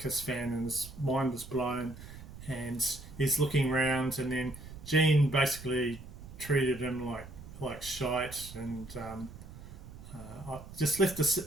fan, and his mind was blown, and he's looking around, and then Gene basically treated him like shite, and I just left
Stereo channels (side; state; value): right; noise; rumble, 15 dB below the sound